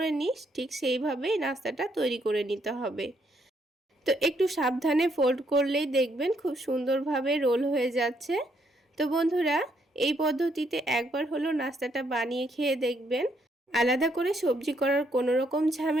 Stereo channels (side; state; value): both; normal; correlation 0.73